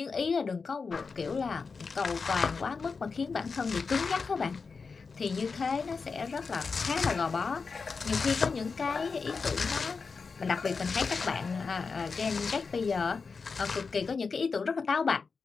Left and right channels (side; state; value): right; quieter; 4.9 dB